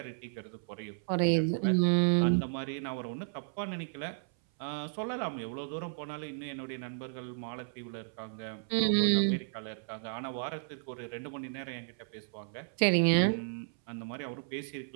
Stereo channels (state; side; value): silent; left; 55 dB below the other